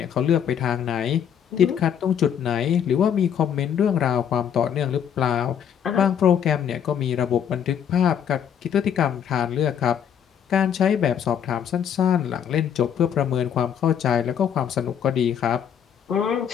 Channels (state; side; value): quieter; right; 8.7 dB